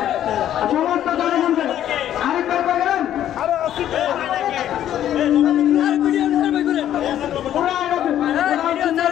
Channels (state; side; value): quieter; right; 11.3 dB